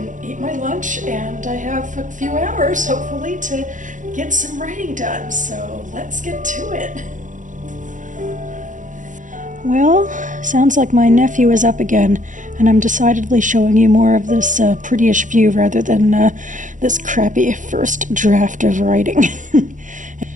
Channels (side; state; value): left; late; 0.37 ms